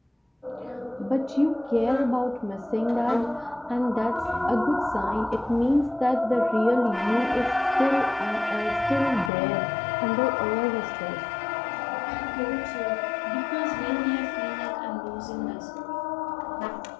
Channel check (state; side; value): drops out; right; at 9.3 s